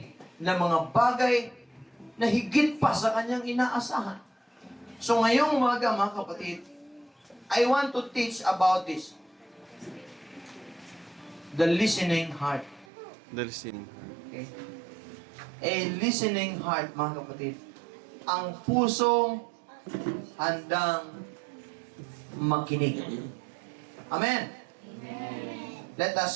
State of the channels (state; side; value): drops out; left; at 12.9 s